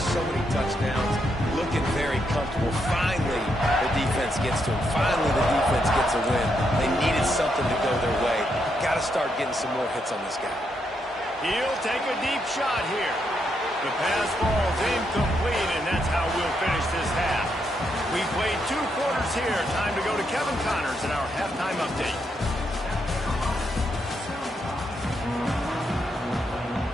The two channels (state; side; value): normal; both; correlation 0.79